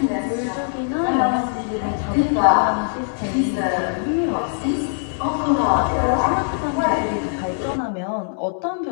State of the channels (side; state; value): right; silent; 65 dB below the other